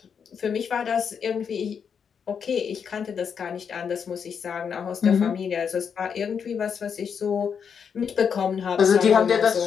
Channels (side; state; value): right; quieter; 6.9 dB